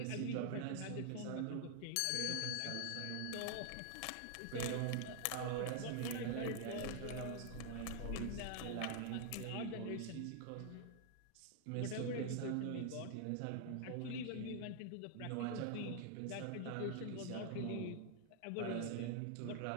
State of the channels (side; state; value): both; different; correlation 0.00